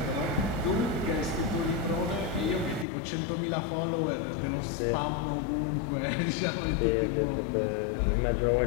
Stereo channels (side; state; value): right; drops out; at 2.9 s